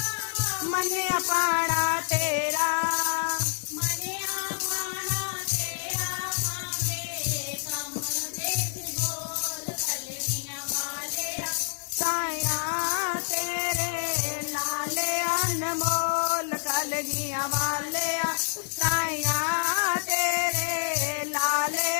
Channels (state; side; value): silent; right; digital silence